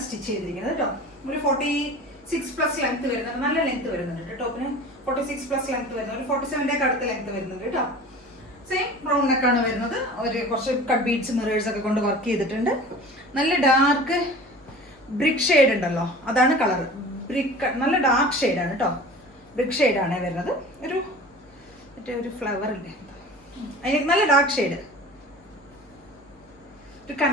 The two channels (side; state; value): both; normal; correlation 0.40